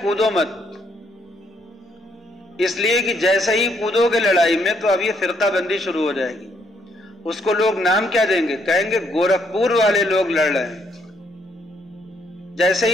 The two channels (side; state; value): both; normal; correlation 0.71